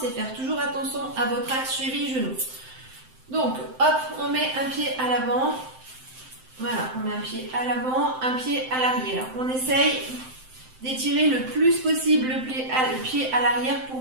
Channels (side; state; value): left; late; 7.7 ms